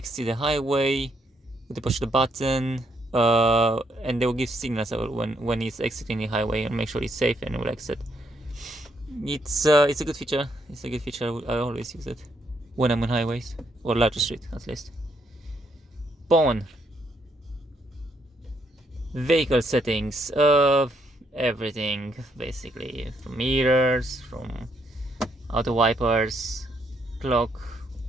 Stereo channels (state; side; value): normal; both; correlation 0.74